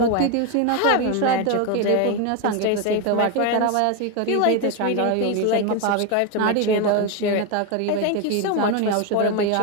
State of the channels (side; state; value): both; different; correlation 0.02